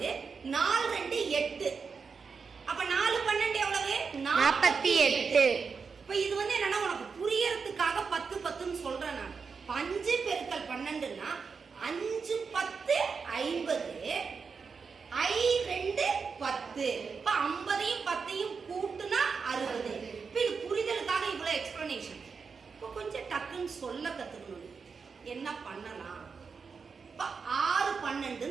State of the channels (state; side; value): quieter; left; 5.4 dB